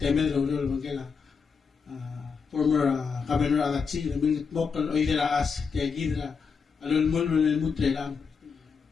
ro mga former governor Alatsi namingit mokal o ira as kaya gidra alon mo mutre lang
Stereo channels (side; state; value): right; quieter; 5.7 dB